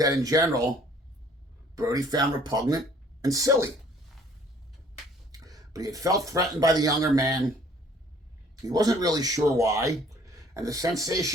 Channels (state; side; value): normal; both; correlation 0.57